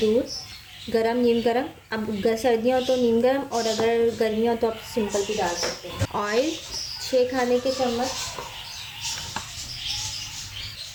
गरम नीम गरम, अब सर्दियाँ हो तो नीम गरम और अगर गर्मियाँ हो तो आप सिंपल भी डाल सकते हैं। ऑयल 6 खाने के चम्मच,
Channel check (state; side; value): identical; both; correlation 1.00